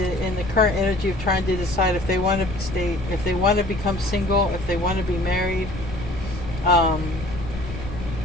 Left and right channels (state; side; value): noise; left; rumble, 10 dB below the sound